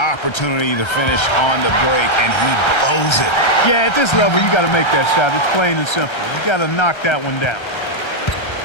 to finish on the break, and he blows it. Yeah, at this level, you got to make that shot. It's plain and simple. You got to knock that one down.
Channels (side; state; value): right; late; 1.3 ms